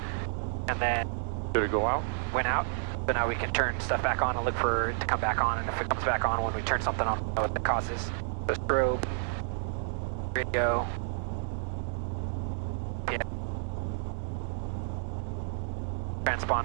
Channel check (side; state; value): left; silent; digital silence